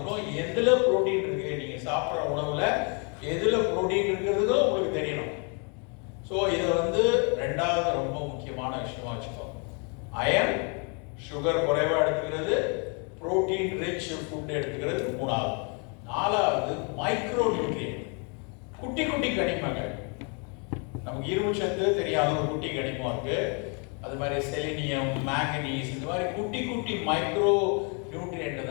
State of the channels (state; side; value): quieter; right; 36.4 dB